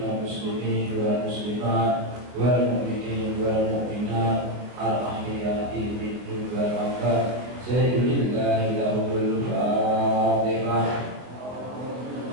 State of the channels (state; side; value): late; left; 23 ms